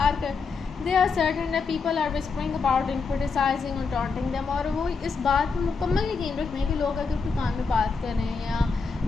They are certain that people are whispering about and criticizing and taunting them. और वो इस बात में मुकम्मल यकीन रखते हैं कि लोग अगर कोई कान में बात कर रहे हैं या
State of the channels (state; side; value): quieter; right; 4.9 dB